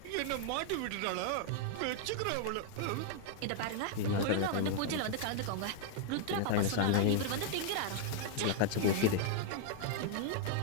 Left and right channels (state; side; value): different; both; correlation 0.00